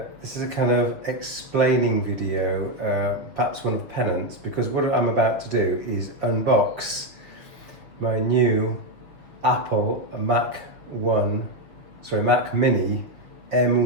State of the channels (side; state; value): left; late; 6.4 ms